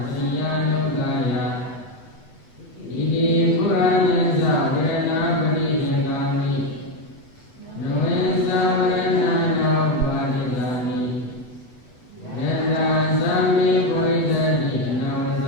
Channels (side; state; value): right; late; 8.1 ms